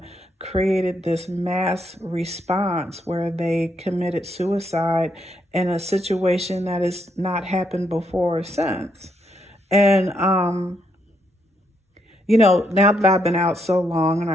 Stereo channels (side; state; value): both; normal; correlation 0.76